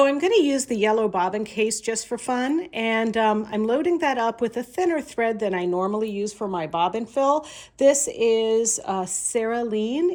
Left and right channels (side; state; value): both; identical; correlation 1.00